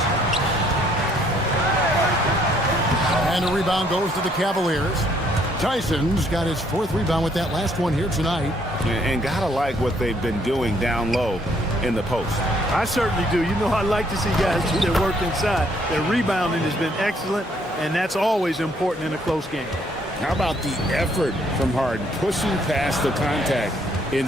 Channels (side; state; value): both; normal; correlation 0.67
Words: And a rebound goes to the Cavaliers. Tyson's got his 4th rebound with that last one here tonight. And gotta like what they've been doing down low in the post. I certainly do. You know, I like to see guys do their work inside. Their rebounding has been excellent, and that's always important in a close game. How about the effort from Harden, pushing past the contact